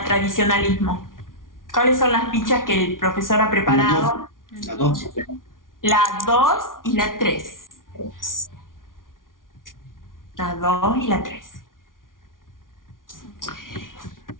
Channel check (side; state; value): right; late; 0.89 ms